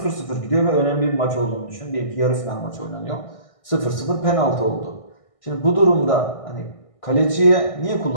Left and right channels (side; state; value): right; late; 1.6 ms